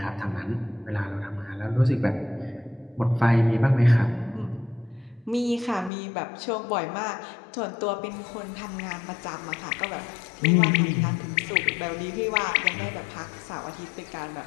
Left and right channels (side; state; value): right; drops out; at 5.9 s